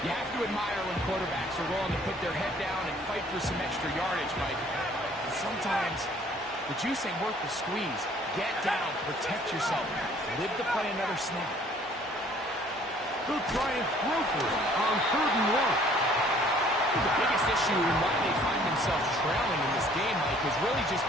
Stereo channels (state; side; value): normal; both; correlation 0.57